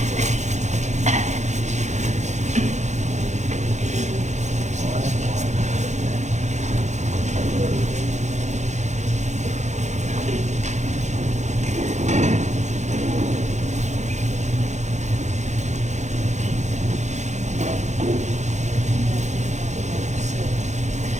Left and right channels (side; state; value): left; late; 0.34 ms